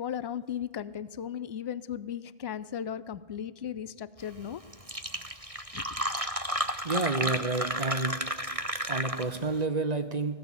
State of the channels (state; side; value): late; left; 1.6 ms